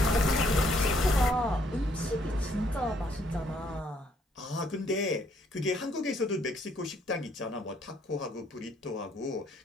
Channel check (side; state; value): both; normal; correlation 0.68